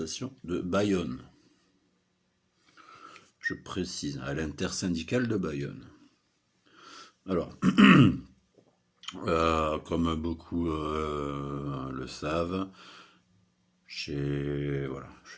de Bayonne? Je précise, à l'intersyndicale de Bayonne. Alors, comme beaucoup le savent, je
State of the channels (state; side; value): identical; both; correlation 1.00